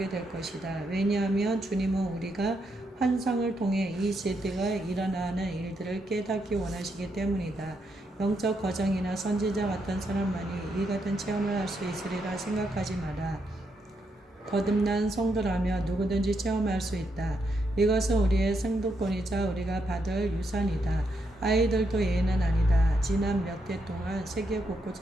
될 것이다. 왜냐하면 주님은 우리가 환상을 통해 이 세대가 일어나는 일들을 깨닫기 원하시기 때문이다. 영적 거정이나 선지자 같은 사람만이 이 같은 체험을 할 수 있으리라 생각하지 마라. 거듭난 성도라면 누구든지 체험할 수 있다. 이것은 우리의 생도권이자 우리가 받을 유산이다. 아이들도 예는 아니다. 지난 몇 해 동안 세계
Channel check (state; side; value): normal; both; correlation 0.80